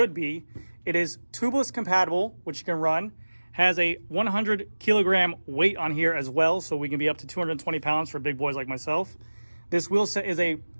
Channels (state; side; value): inverted; both; correlation -1.00